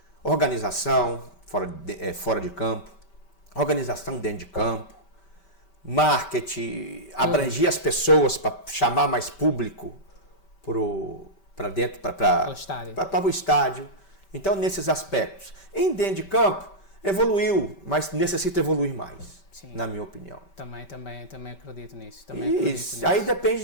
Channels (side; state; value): right; late; 5.2 ms